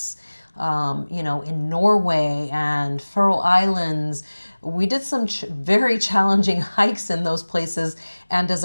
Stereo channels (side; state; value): both; inverted; correlation -1.00